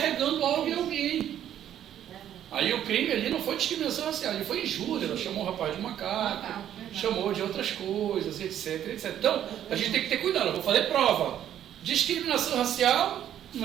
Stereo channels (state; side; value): quieter; left; 10.7 dB